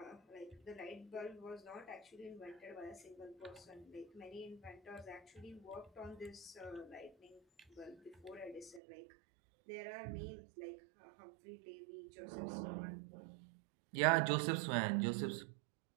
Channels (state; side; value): drops out; left; at 8.8 s